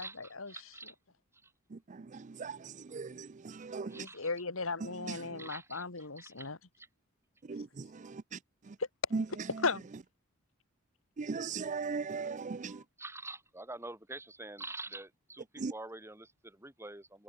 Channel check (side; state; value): both; normal; correlation -0.10